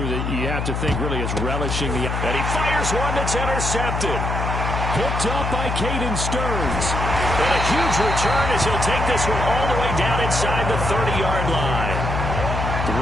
that you have to think really is relishing the... And he fires one that's intercepted. Picked up by Caden Stearns. And a huge return as he'll take this one all the way down inside the 30-yard line. The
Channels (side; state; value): left; noise; hum, 2 dB below the sound